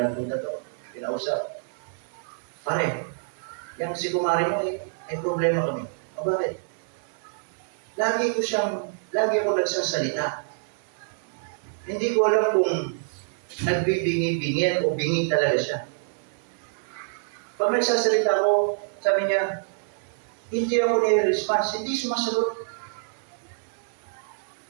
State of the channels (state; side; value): silent; left; digital silence